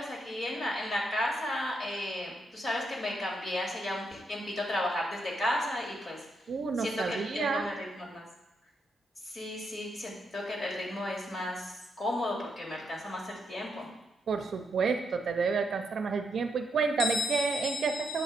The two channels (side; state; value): both; normal; correlation 0.79